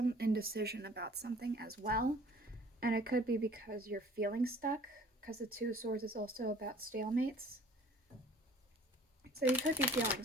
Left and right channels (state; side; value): normal; both; correlation 0.51